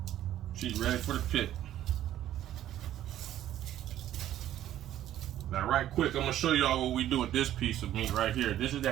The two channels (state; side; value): quieter; left; 12.3 dB